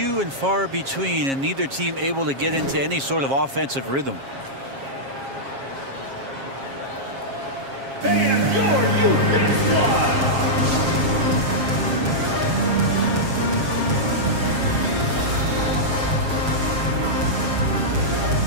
and far between, and neither team able to get into any sort of offensive rhythm. And your youth squad.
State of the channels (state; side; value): late; left; 7.4 ms